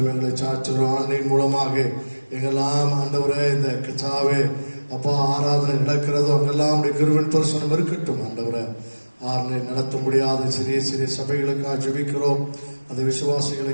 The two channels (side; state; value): both; inverted; correlation -1.00